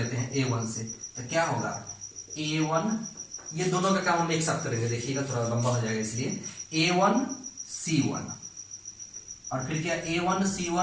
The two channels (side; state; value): both; identical; correlation 1.00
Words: हैं a1 से, तो क्या होगा a1, ये दोनों का काम हम एक साथ करेंगे, देखिएगा थोड़ा लंबा हो जाएगा, इसलिए a1 c1 और फिर क्या a1